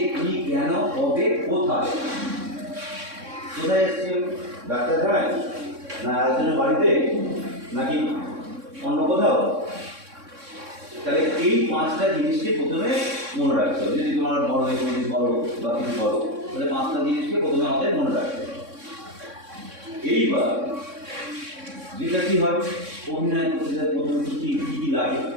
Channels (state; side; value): late; left; 3.6 ms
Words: কি, কেন, কবে, কোথায়? কোথায় এসেছি? ডাক্তারখানায়, না একজনের বাড়িতে, নাকি অন্য কোথাও? তাহলে এই পাঁচটা জিনিসকে প্রথমে মনে রাখতে হবে। যদি তোমার বড় এক্সপিরিয়েন্স করো বা কিছু করো, তাহলে পাঁচটা জিনিসকে প্রথমে আমাদের মনে রাখতে হবে। এইবার যেটা কী হয়, অভিনয় করতে গেলে প্রথমে কী কী লাগে?